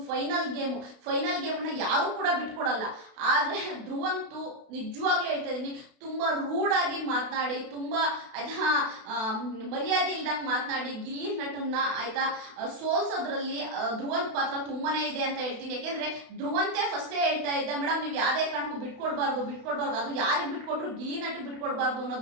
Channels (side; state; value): left; late; 32 ms